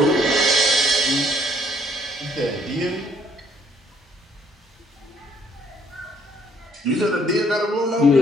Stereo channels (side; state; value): both; normal; correlation 0.65